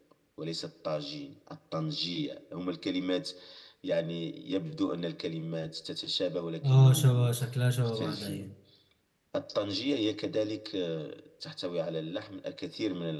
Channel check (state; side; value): identical; both; correlation 1.00